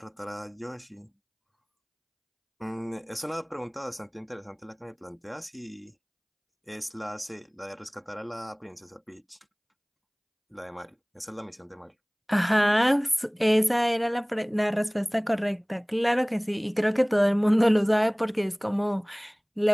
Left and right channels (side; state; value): both; identical; correlation 1.00